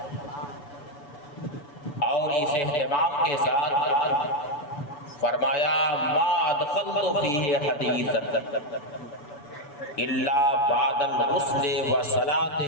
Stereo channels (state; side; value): late; right; 7.0 ms